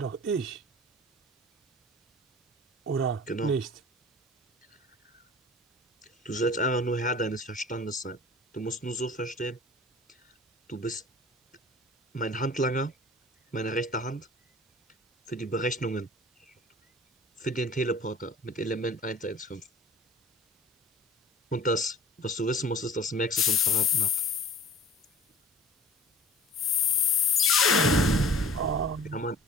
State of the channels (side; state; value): both; normal; correlation 0.45